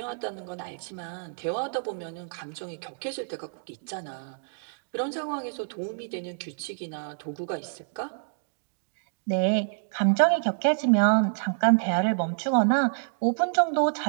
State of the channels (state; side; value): silent; left; digital silence